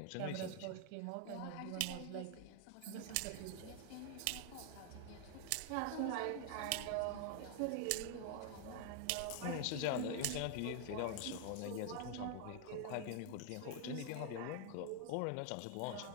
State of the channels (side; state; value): both; different; correlation 0.00